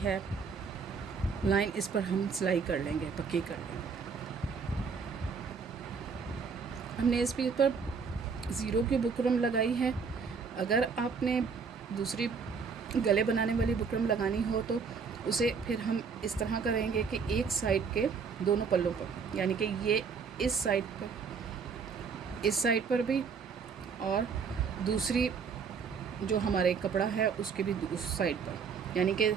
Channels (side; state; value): left; quieter; 5.6 dB